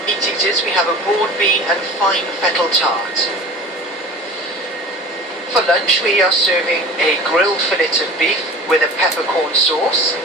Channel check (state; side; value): normal; both; correlation 0.39